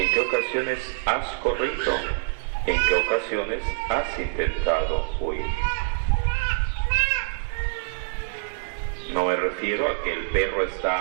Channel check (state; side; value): silent; left; digital silence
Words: qué ocasiones has corrido? ¿En qué ocasiones has intentado huir? No me refiero a que el perro